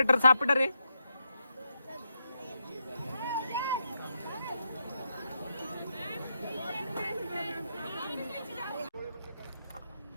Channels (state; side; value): inverted; both; correlation -0.82